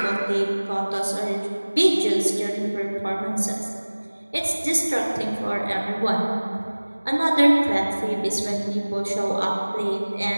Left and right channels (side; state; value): both; inverted; correlation -1.00